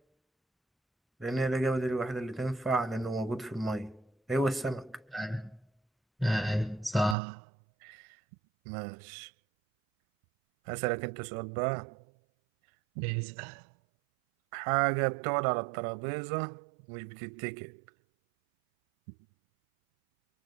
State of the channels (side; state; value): left; drops out; at 7.2 s